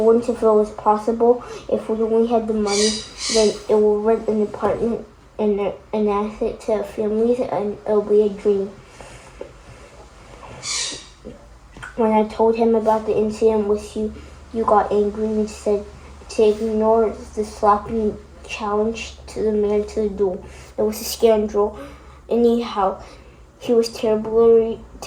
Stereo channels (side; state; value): both; identical; correlation 1.00